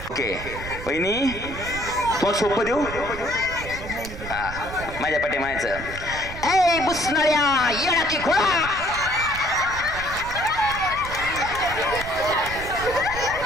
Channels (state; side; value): noise; right; rumble, 11 dB below the sound